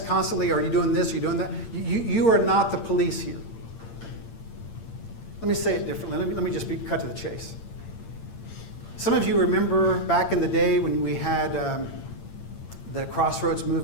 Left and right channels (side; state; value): right; late; 8.8 ms